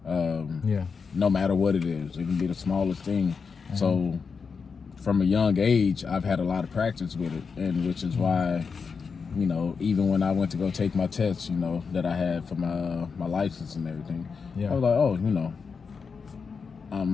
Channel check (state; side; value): quieter; right; 5.4 dB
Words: No matter what it is, it can be the smallest thing. So from a young age, I've had a lot of practice with it, and which is why, you know, even when I went to go take my tests, you know, that I had for my license and everything, I was like, oh, you know,